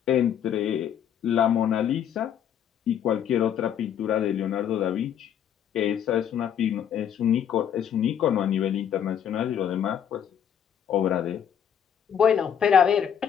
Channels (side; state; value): right; quieter; 8.9 dB